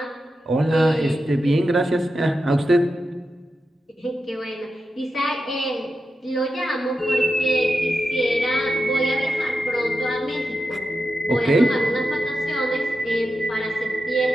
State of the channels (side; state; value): both; normal; correlation 0.89